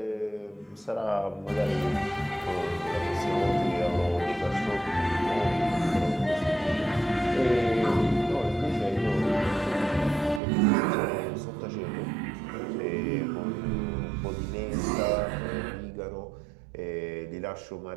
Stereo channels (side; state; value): left; drops out; at 10.4 s